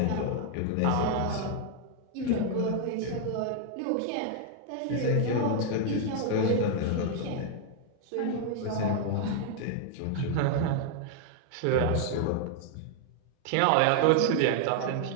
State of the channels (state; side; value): different; both; correlation 0.00